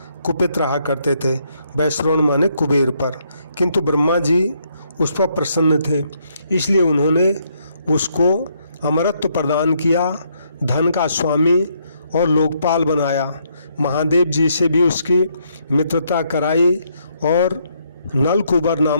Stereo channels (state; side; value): inverted; both; correlation -0.73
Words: कुपित रहा करते थे। वैश्रवण माने कुबेर पर, किंतु ब्रह्मा जी उस पर प्रसन्न थे, इसलिए उन्होंने उसको अमरत्व प्रदान किया, धन का स्वामी और लोकपाल बनाया। महादेव जी से भी उसकी मित्रता कराई और नलकुबर